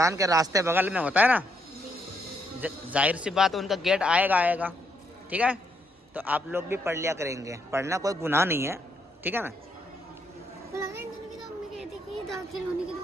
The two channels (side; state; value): both; normal; correlation 0.76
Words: کے راستے بغل میں ہوتا ہے نا، ظاہر سی بات ان کا گیٹ آئے گا، ٹھیک ہے؟ تو آپ لوگ بھی پڑھ لیا کریں گے، پڑھنا کوئی گناہ نہیں ہے، ٹھیک ہے نا؟ یہ داخل ہونے کی